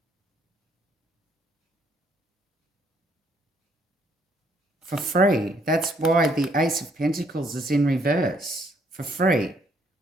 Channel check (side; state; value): both; normal; correlation 0.68